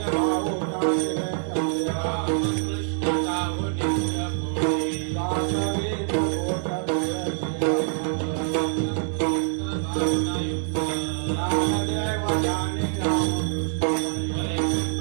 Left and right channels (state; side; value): silent; left; 62 dB below the other